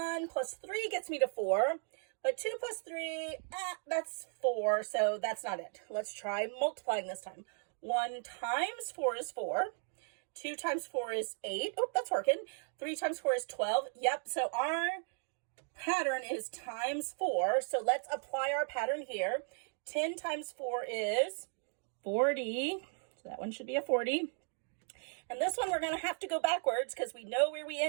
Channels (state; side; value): silent; left; 54 dB below the other